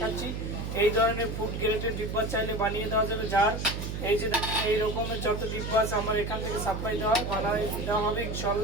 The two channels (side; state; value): right; noise; hum, 5 dB below the sound